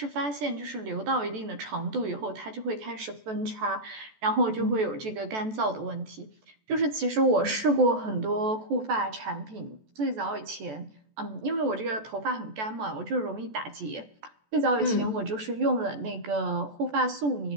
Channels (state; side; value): late; left; 14 ms